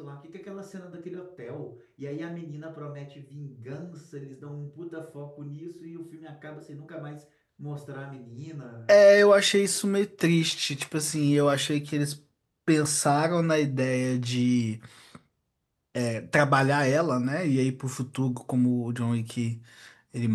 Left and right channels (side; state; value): both; identical; correlation 1.00